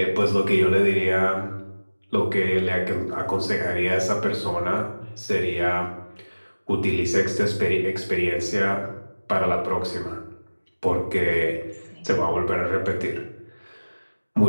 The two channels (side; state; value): both; inverted; correlation -1.00